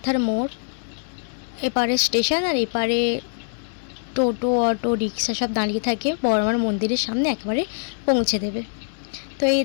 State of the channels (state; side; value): silent; right; digital silence